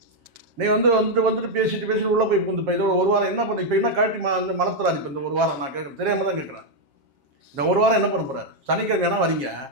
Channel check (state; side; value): late; left; 7.4 ms